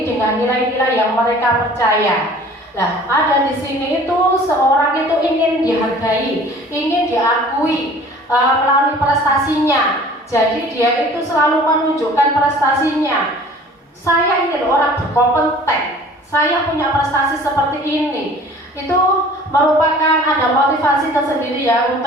dengan nilai-nilai yang mereka percaya. Nah, ada di sini itu seorang itu ingin dihargai, ingin diakui melalui prestasinya. Jadi dia itu selalu menunjukkan prestasinya. Saya ingin orang berkompeten, saya punya prestasi seperti ini. Itu merupakan ada motivasi tersendiri ya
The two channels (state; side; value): normal; both; correlation 0.48